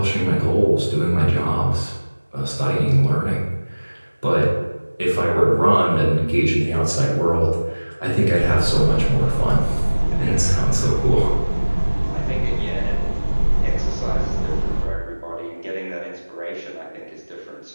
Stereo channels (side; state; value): both; inverted; correlation -1.00